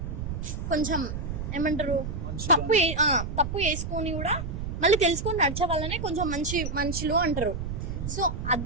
కొంచెం ఏమంటారు, తప్పు చేసుకొని కూడా మళ్ళీ తెలుసుకొని నడిచే వాళ్ళనే కొంచెం మంచి మనుషులు అంటారు. సో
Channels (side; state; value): right; noise; rumble, 5 dB below the sound